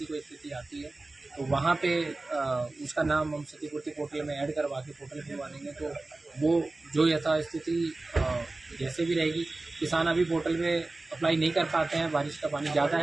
कोई स्थिति आती है तो वहाँ पे उसका नाम हम क्षतिपूर्ति पोर्टल में ऐड करवा के पोर्टल खुलवा देंगे। तो वो जो यथास्थिति जैसे भी रहेगी, किसान अभी पोर्टल में अप्लाई नहीं कर पाते हैं, बारिश का पानी ज़्यादा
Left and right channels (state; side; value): quieter; left; 3.1 dB